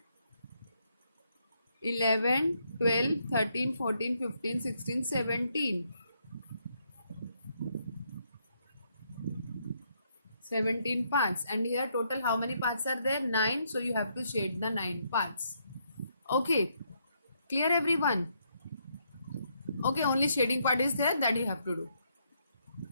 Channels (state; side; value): inverted; both; correlation -0.75